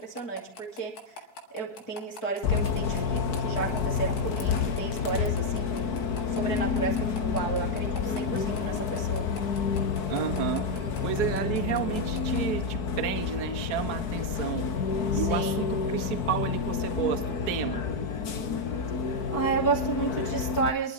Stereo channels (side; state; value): right; late; 4.7 ms